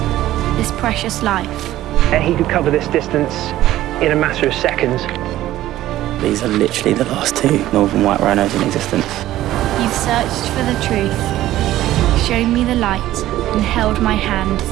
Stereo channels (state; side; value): quieter; left; 14.4 dB